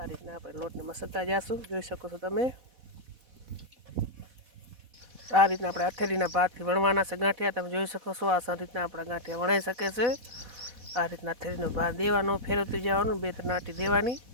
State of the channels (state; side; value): late; left; 4.1 ms